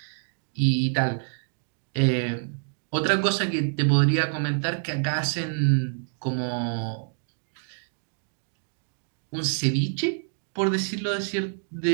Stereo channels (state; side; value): silent; left; digital silence